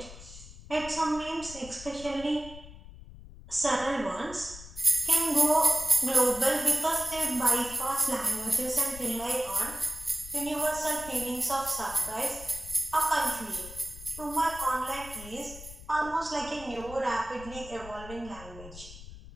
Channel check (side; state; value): left; noise; rumble, 15 dB below the sound